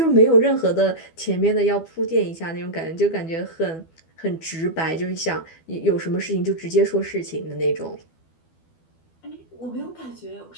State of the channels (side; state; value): right; late; 12 ms